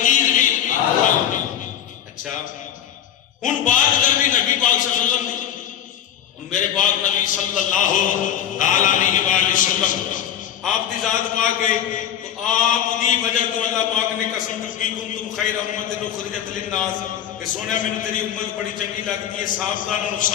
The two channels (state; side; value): quieter; right; 10.0 dB